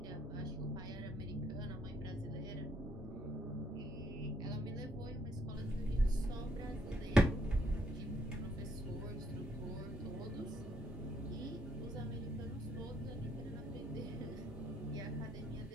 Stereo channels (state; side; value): normal; both; correlation 0.70